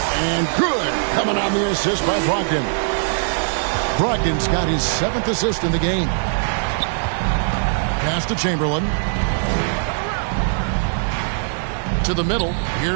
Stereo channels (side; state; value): left; silent; digital silence